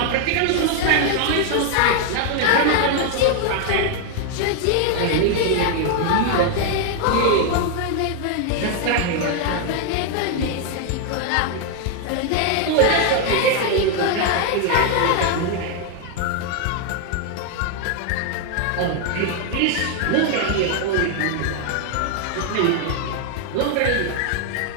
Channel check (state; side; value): different; both; correlation 0.00